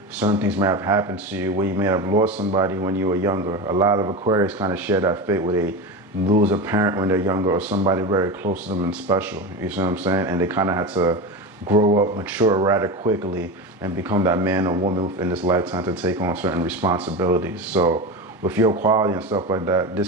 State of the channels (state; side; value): normal; both; correlation 0.23